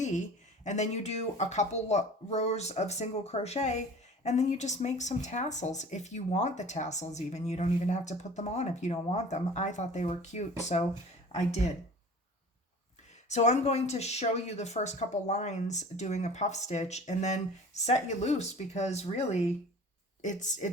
and then you do a couple rows of single crochet, and then you just make some tassels if you want the tassels. Even you don't even have to put them on if you don't want them. I thought they were cute, so I did. So I'm going to show you the first couple lines doing a puff stitch and then set you loose, because really it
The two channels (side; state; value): both; normal; correlation 0.42